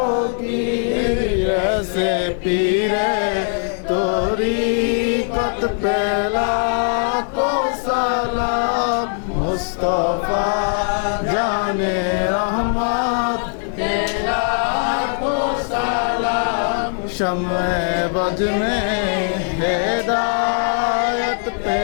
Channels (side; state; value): right; silent; 61 dB below the other